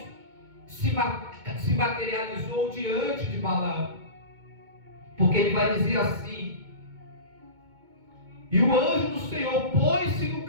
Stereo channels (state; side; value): late; left; 2.2 ms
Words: se materializou diante de Balaão. Porque ele vai dizer assim: e o anjo do Senhor pôs-se no